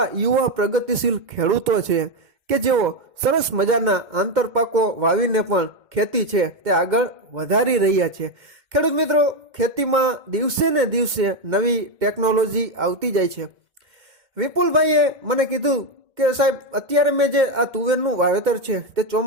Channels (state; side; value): late; left; 2.1 ms